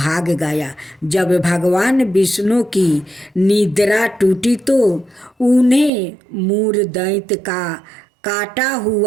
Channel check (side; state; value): left; drops out; at 5.9 s